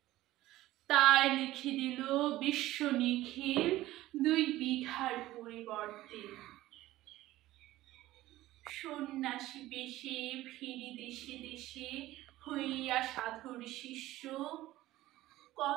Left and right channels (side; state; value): left; quieter; 16.2 dB